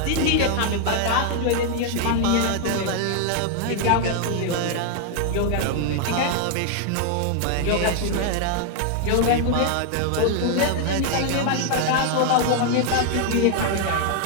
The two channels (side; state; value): both; different; correlation 0.00